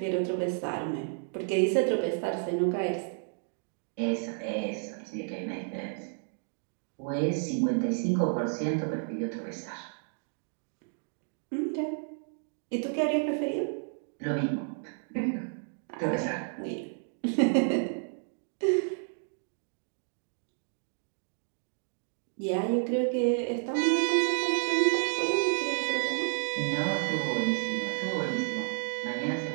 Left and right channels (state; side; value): silent; left; 57 dB below the other